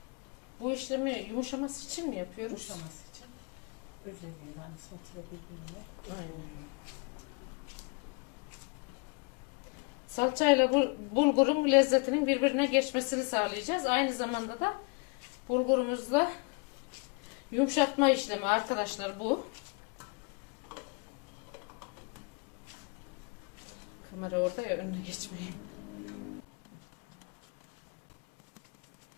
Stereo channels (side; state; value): right; quieter; 33.4 dB